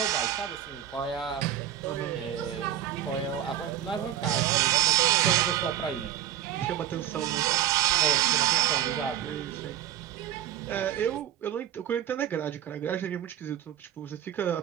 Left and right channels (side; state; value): left; quieter; 11.2 dB